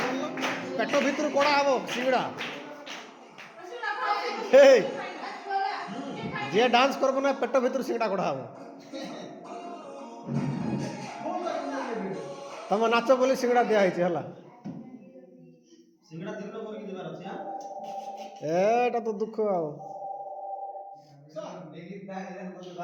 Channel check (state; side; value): identical; both; correlation 1.00